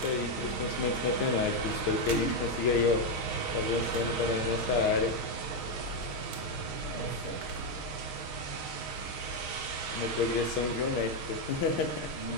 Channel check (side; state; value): right; late; 6.6 ms